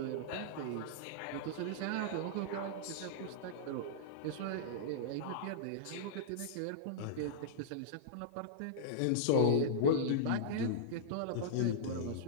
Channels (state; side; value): different; both; correlation -0.03